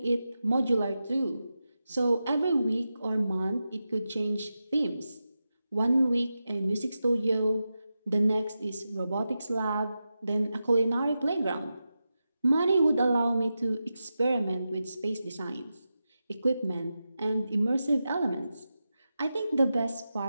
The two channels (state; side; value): inverted; both; correlation -0.91